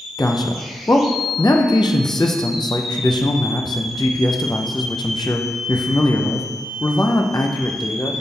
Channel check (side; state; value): both; normal; correlation 0.88